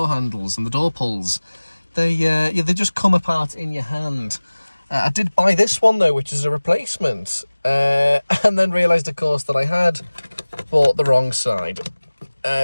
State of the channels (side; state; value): both; inverted; correlation -1.00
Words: handles and the door pulls. They just come apart in your hand. I did buy this one though, which is a replacement, and then realised, of course, that I had bought the wrong side